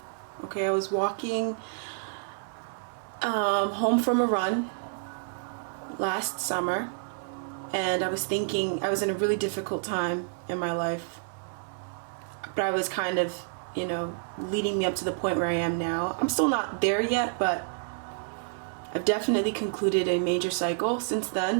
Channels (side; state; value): left; silent; 59 dB below the other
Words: home from a run last summer, and I was thinking, I was in a really difficult time in my life, but I was kind of, you know, leading me up to the point where I am now. I'm still not there yet, but I've definitely concluded a major cycle since